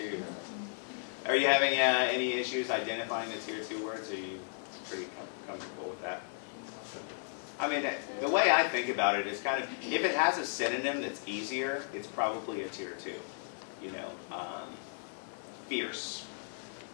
Are you having any issues identifying the tier 2 words? Are you pretty comfortable with that? I mean, the way I think about it is kind of, if it has a synonym that's easier, it's probably a tier 2. Fierce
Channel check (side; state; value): right; silent; digital silence